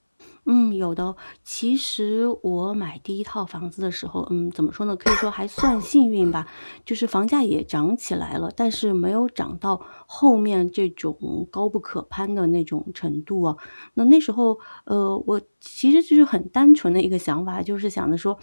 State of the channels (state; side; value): inverted; both; correlation -1.00